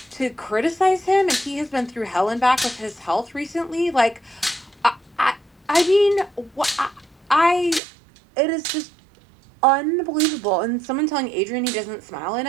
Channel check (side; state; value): left; drops out; at 7.8 s